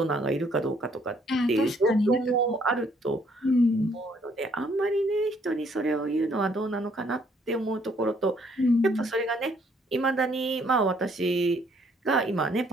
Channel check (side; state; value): both; normal; correlation 0.66